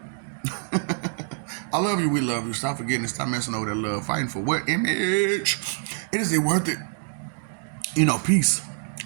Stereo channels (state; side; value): silent; left; digital silence